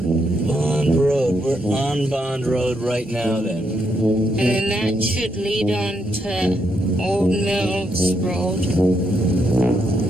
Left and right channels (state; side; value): normal; both; correlation 0.78